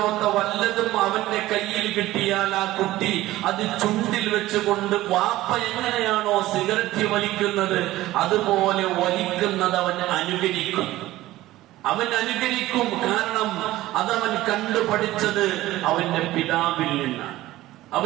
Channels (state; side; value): quieter; left; 16.3 dB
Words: വല്ലതും അവന്റെ കയ്യിൽ കിട്ടിയാൽ ആ കുട്ടി അത് ചുണ്ടിൽ വെച്ചുകൊണ്ട് വാപ്പ എങ്ങനെയാണോ സിഗരറ്റ് വലിക്കുന്നത് അതുപോലെ വലിക്കുന്നത് അവൻ അനുകരിക്കും. കാരണം അതവൻ കണ്ടുപഠിച്ചത് അവന്റെ പിതാവിൽ